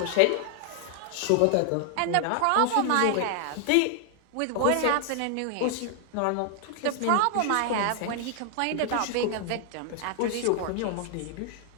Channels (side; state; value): both; different; correlation 0.00